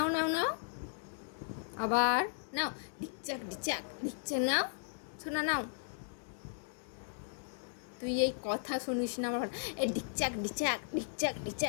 নাও নাও আবার নাও, ডিকচাক ডিচাক ডিকচাক, নাও শোনা নাও। তুই এই কথা শুনিস না আমার, এই ডিকচাক ডিচাক ডিকচাক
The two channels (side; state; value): right; silent; digital silence